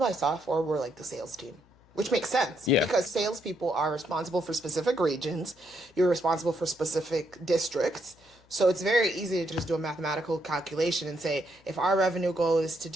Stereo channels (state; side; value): noise; left; hum, 30 dB below the sound